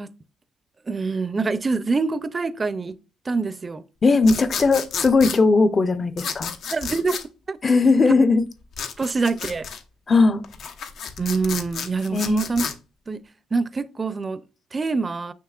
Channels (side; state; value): both; normal; correlation 0.87